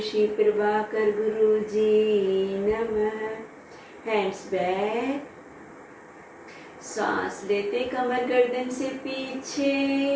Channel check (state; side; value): identical; both; correlation 1.00